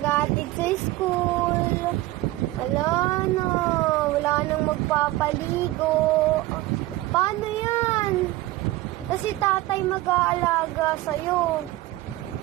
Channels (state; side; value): quieter; left; 17.8 dB